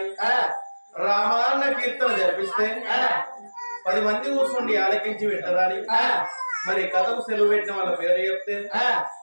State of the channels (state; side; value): inverted; both; correlation -1.00